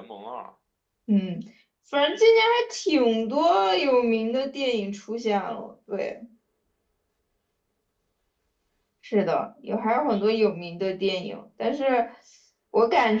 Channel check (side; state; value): both; identical; correlation 1.00